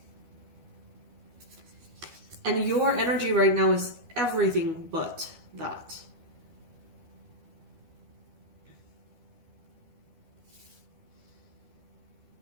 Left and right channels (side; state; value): left; late; 12 ms